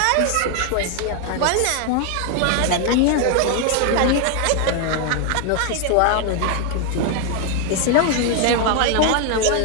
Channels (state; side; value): different; both; correlation 0.01